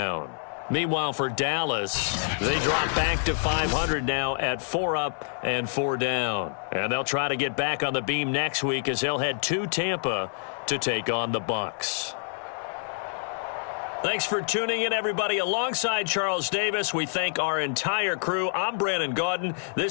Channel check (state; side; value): silent; right; digital silence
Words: Meanwhile, for Dallas, they drop back to 500 now at 4 up and 4 down. And they'll try to get back on the beam next week as they'll head to Tampa to take on the Bucs. Thanks for tuning in, everybody. Alongside Charles Davis, we thank our entire crew. I'm Brandon Gaudin.